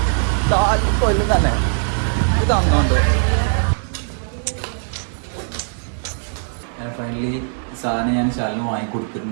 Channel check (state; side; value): silent; left; 66 dB below the other